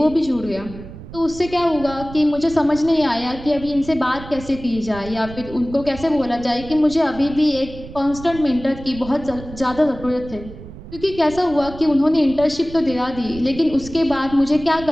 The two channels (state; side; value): noise; right; rumble, 14 dB below the sound